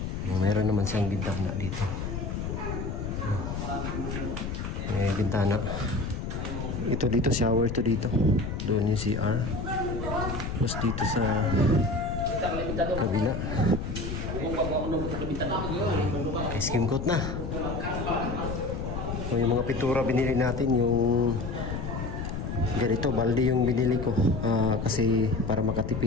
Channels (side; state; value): left; noise; rumble, 4 dB below the sound